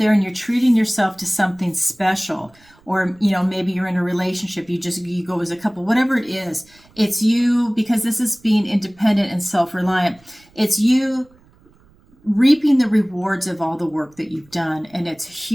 and you're treating yourself to something special. Or, maybe you're in a relationship. You go as a couple, whatever it is. It's you, because this is being independent and self-reliant. It's you reaping the rewards of all the work that you've done, and it's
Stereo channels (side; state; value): right; noise; rumble, 30 dB below the sound